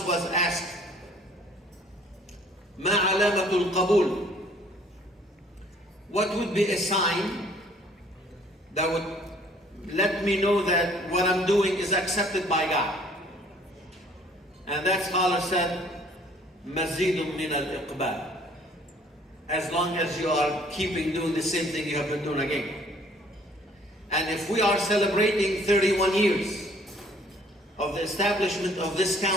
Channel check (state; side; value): normal; both; correlation 0.57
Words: was asked, ما علامة القبول? What would be a sign that would let me know that what I'm doing is accepted by God? And that scholar said, مزيد من الإقبال. As long as you are keeping doing the same thing you have been doing again. And if we are celebrating 31 years of the establishment of this